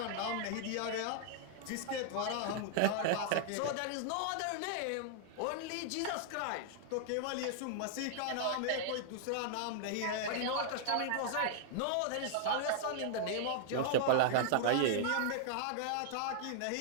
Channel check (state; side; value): different; both; correlation -0.01